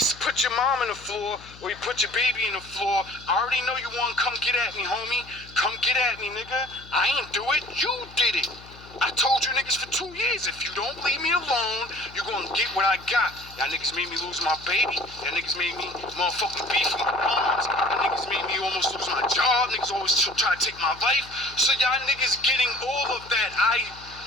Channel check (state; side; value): noise; left; hum, 20 dB below the sound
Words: put your mom in the floor, or he put your baby in the floor, I already know you want to come get at me, homie. Come get at me, nigga. I ain't do it. You did it. I told you niggas for 2 years, if you don't leave me alone, you're gonna get what I got. Y'all niggas made me lose my baby. Y'all niggas made me motherfucking beef with my moms. Y'all niggas made me almost lose my job. Niggas always try to take my life. So y'all niggas getting all of that. I